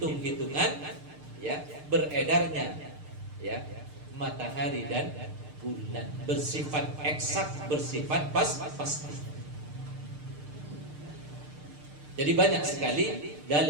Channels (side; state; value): left; late; 6.6 ms